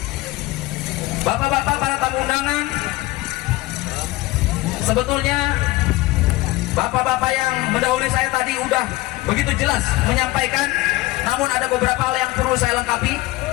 Bapak-bapak, para tamu undangan, sebetulnya bapak-bapak yang mendahului saya tadi udah begitu jelas menyampaikan, namun ada beberapa hal yang perlu saya lengkapi.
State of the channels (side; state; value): right; quieter; 19.7 dB